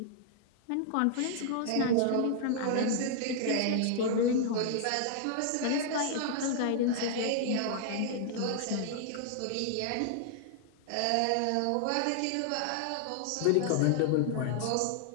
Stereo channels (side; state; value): both; different; correlation -0.01